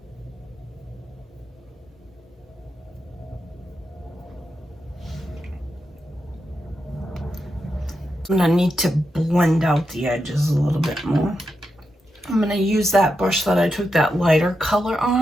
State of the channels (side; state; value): both; normal; correlation 0.86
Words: I'm gonna need to blend out the edges a little bit more. I'm gonna use that brush that I took that lighter color